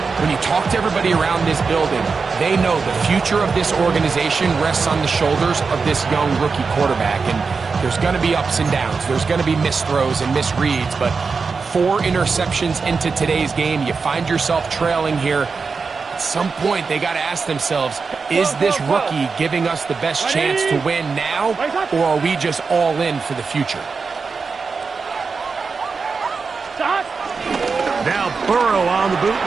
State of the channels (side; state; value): left; quieter; 4.9 dB